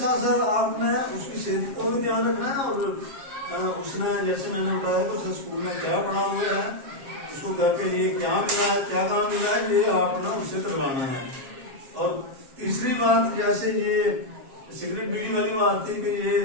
साथ आपने उसकी सेहत को भी ध्यान रखना है और उसने जैसे मैंने बताया तो उसने स्कूल में क्या पढ़ा हुआ है, उसको घर के लिए क्या मिला है, क्या काम मिला है, ये आपने उससे करवाना है। और तीसरी बात, जैसे ये सिगरेट बीड़ी वाली बात थी कि ये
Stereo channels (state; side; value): late; left; 7.4 ms